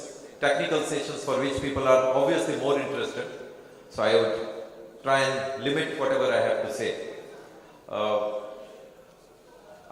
technical sessions for which people are obviously more interested. So I would try and limit whatever I have to say.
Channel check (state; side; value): identical; both; correlation 1.00